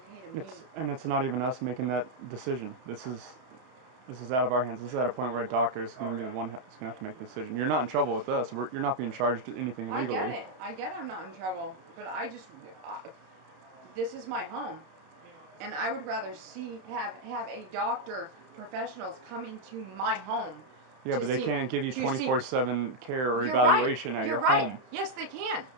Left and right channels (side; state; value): left; late; 31 ms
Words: to me. It's not even us making that decision. This is out of our hands. This is at a point where a doctor is going to be the one that's going to have to make the decision. You're not in trouble with us. You're not being charged anything legally. I get I'm not in trouble, but this is my home, and I would rather have a doctor, professionals come into my home. Yeah, but they can't give you 24/7 care or You're evaluation right. at your You're right. home. Yes, they can,